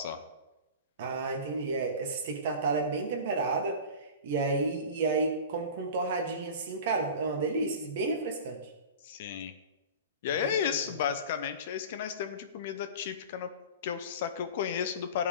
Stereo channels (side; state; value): both; inverted; correlation -0.35